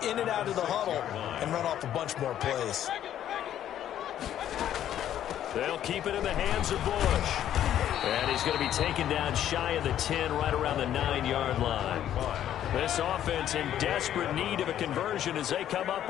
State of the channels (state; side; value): quieter; right; 11.1 dB